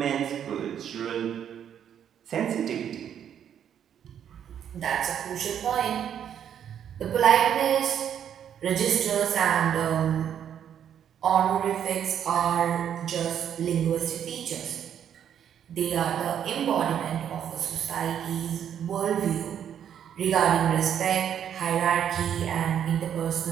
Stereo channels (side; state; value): left; quieter; 9.2 dB